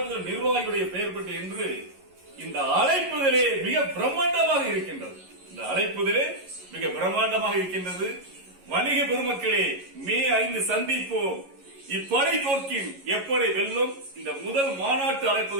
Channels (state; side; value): late; left; 11 ms